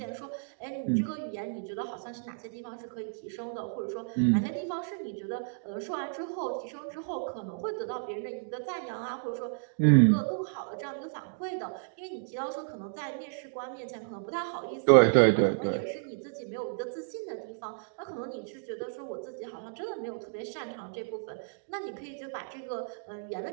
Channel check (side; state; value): left; silent; digital silence